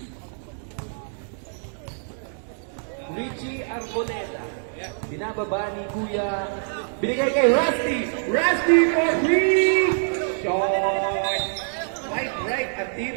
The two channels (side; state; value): left; silent; digital silence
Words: Richie Arboleda. Binababa ni Kuya. Binigay kay Rusty. Rusty for 3. Short. Right. At